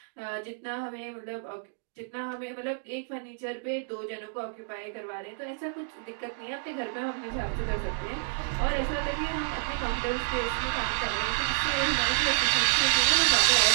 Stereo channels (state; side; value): silent; left; digital silence